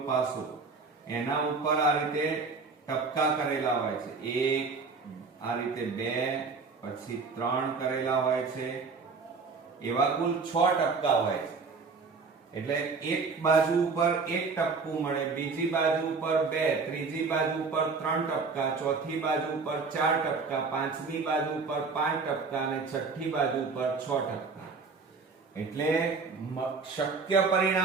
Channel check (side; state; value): left; quieter; 4.6 dB